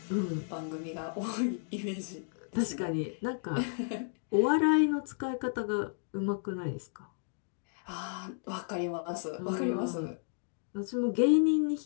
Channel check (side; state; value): right; silent; digital silence